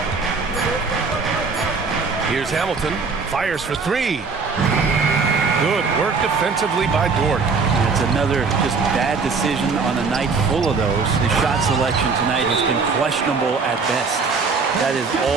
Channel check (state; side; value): quieter; left; 4.7 dB